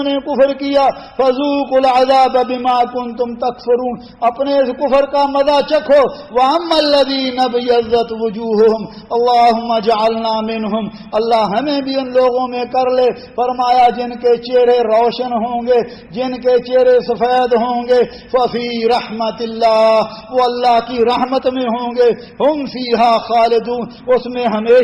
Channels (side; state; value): both; identical; correlation 1.00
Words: نے کفر کیا، فذوقوا العذاب بما کنتم تکفرون، اپنے اس کفر کا مزہ چکھو۔ واما الذین ابیضت وجوہہم اللہم اجعلنا منہم، اللہ ہمیں بھی ان لوگوں میں کر لے۔ فرمایا جن کے چہرے روشن ہوں گے، جن کے چہرے سفید ہوں گے، ففی رحمت اللہ، وہ اللہ کی رحمت میں ہوں گے، ہم فیہا خالدون، اس میں